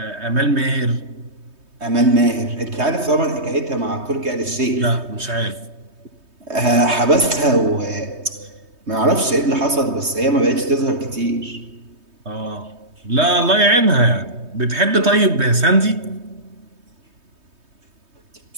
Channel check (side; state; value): left; late; 3.2 ms